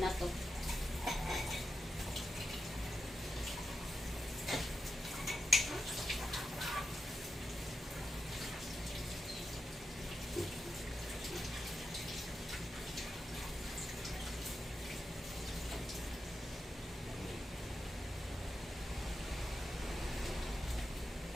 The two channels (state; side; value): normal; both; correlation 0.89